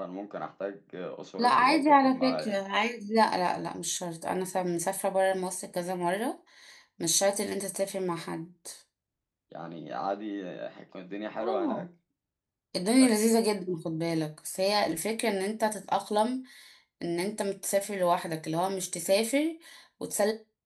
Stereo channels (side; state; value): both; identical; correlation 1.00